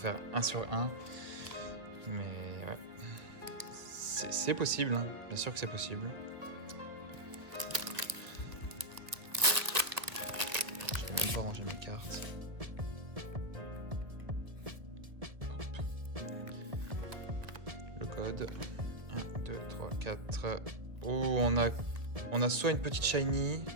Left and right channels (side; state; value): left; late; 1.5 ms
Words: 1 sur 1. Mais ouais. C'est possible, hein. Bien sûr que c'est possible. Je vais même pas ranger mes cartes. Le code. 1, 2, 3, 4. Oh, on a soit une petite shiny.